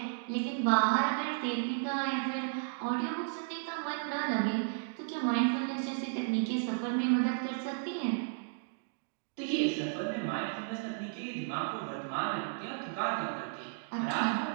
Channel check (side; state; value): left; silent; digital silence